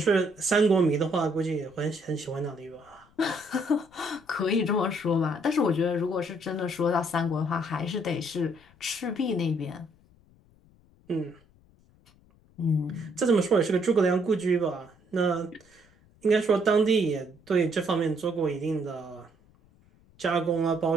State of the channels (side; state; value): left; noise; rumble, 30 dB below the sound